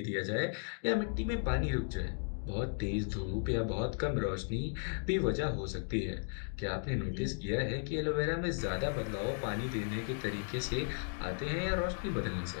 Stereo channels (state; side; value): silent; right; 54 dB below the other